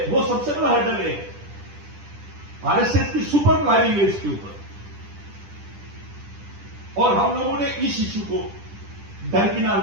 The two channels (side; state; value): left; late; 10 ms